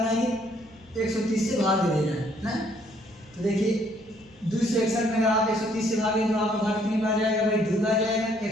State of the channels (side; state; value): left; noise; rumble, 28 dB below the sound